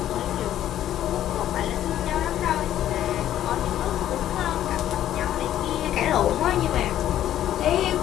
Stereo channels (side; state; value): right; quieter; 11.9 dB